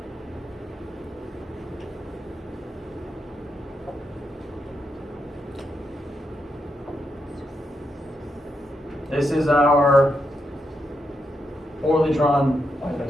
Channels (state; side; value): normal; both; correlation 0.83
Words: this is our poorly drawn, why did I